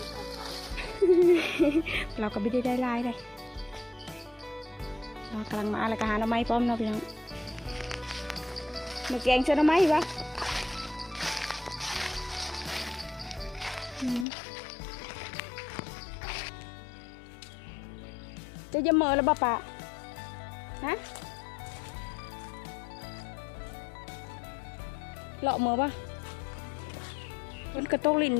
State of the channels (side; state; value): right; drops out; at 14.2 s